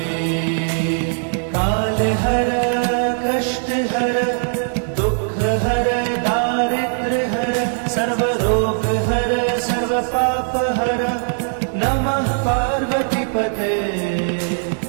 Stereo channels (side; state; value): left; silent; digital silence